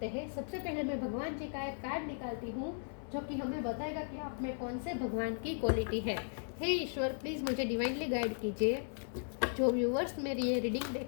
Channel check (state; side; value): silent; right; 53 dB below the other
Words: हैं। सबसे पहले मैं भगवान जी का एक कार्ड निकालती हूँ जो कि हमें बताएगा कि आप में कौन से भगवान की क्वालिटी है। हे ईश्वर, प्लीज़ मुझे डिवाइनली गाइड कीजिए। जो व्यूअर्स मेरी ये रीडिंग